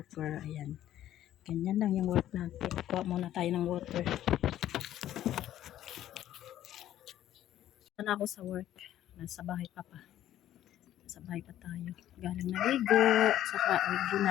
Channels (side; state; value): right; quieter; 12.4 dB